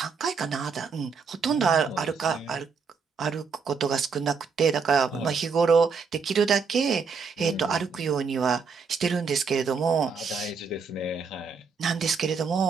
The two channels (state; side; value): quieter; left; 5.4 dB